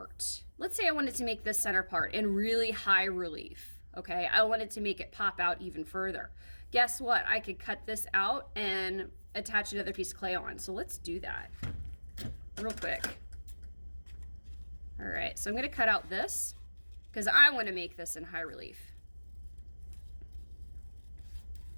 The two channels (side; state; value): both; inverted; correlation -1.00